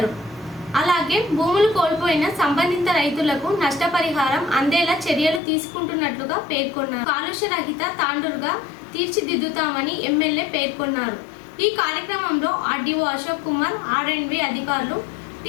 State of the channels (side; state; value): right; drops out; at 5.4 s